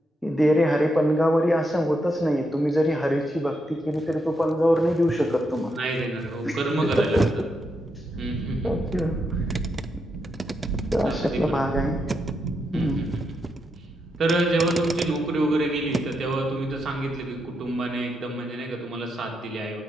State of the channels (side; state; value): both; normal; correlation 0.82